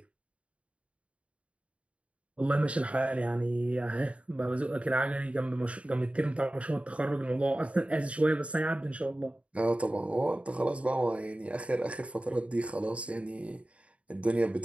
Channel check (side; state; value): left; late; 0.063 ms